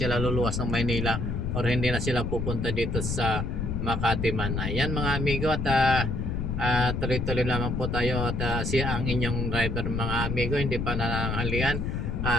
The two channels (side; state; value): left; noise; rumble, 1 dB below the sound